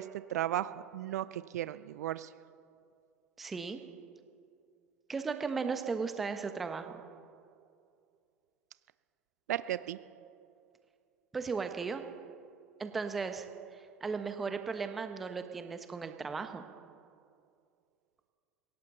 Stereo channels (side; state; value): left; quieter; 6.4 dB